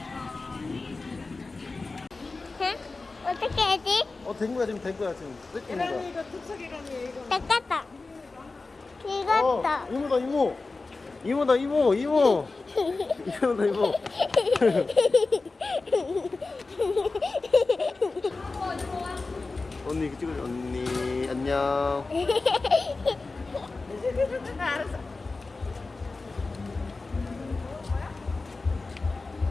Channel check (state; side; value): quieter; right; 3.7 dB